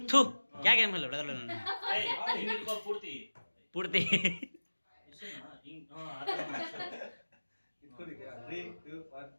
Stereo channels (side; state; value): both; inverted; correlation -1.00